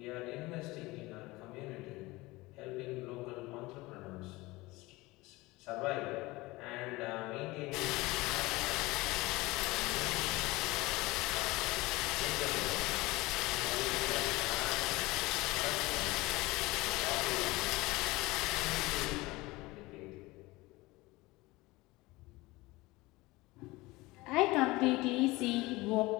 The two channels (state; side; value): quieter; right; 21.2 dB